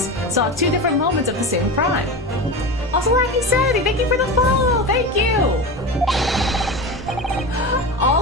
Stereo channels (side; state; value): both; normal; correlation 0.25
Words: saw two different moments of the same crime. Also lacking sanity. Thank you for the follow. Thank you.